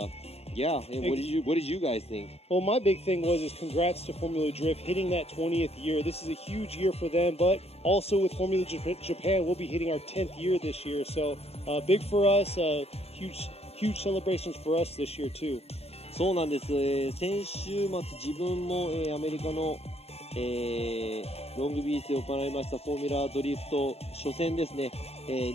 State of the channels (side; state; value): right; late; 0.29 ms